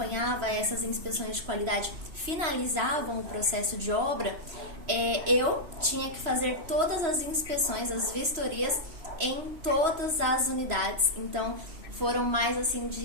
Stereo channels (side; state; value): left; late; 3.0 ms